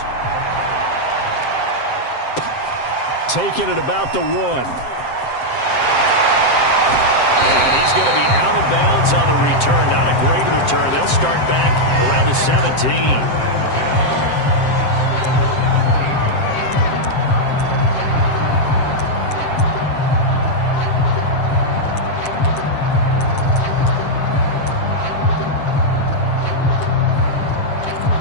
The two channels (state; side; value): late; right; 7.6 ms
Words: Taking it about the 1. And he's going to be out of bounds on the return. Not a great return. They'll start back around the 17.